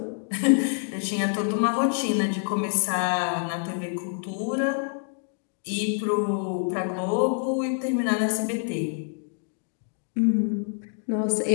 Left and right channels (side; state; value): right; silent; 61 dB below the other